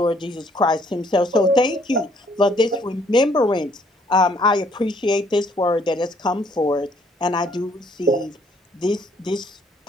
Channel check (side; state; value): both; normal; correlation 0.65